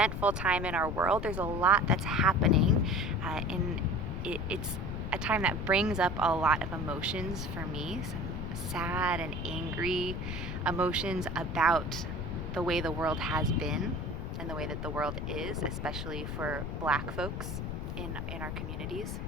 time in our world. There's a lot that's happening it's a time that brings up a lot of emotions for me, some sad and angry emotions about the way the world has been and the way that the world is, especially for Black folks in our communities.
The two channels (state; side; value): noise; left; rumble, 4 dB below the sound